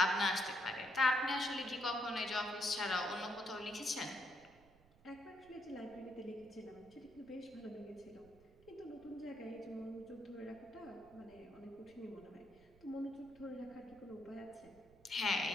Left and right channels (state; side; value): noise; right; rumble, 26 dB below the sound